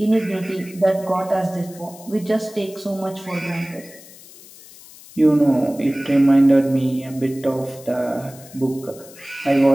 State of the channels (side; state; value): left; noise; hiss, 20 dB below the sound